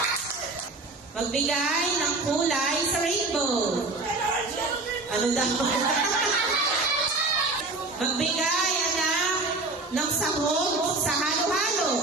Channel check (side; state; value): left; quieter; 3.3 dB